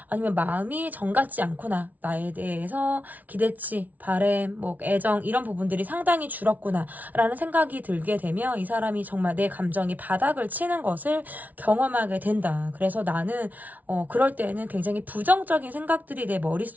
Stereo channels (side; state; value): left; late; 0.076 ms